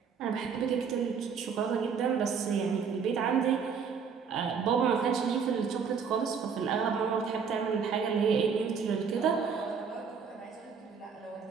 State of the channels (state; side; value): quieter; left; 6.2 dB